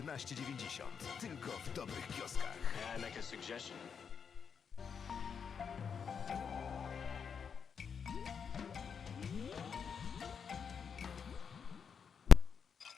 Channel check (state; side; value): quieter; right; 6.7 dB